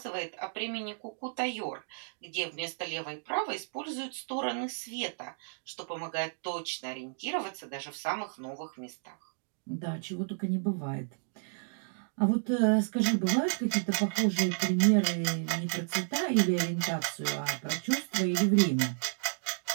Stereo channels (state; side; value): silent; left; digital silence